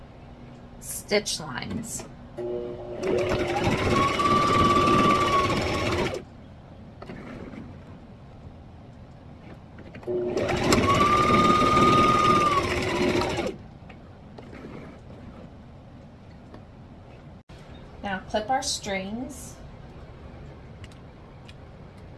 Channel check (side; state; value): both; identical; correlation 1.00